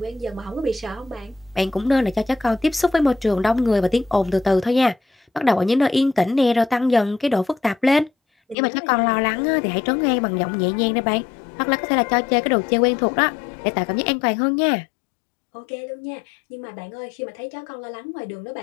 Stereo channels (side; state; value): right; drops out; at 8.6 s